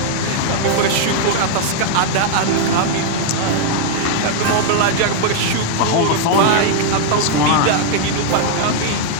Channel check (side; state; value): both; different; correlation 0.00